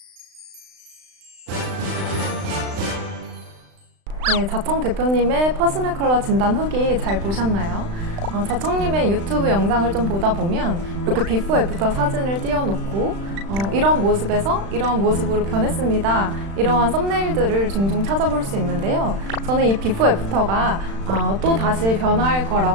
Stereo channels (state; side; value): late; left; 36 ms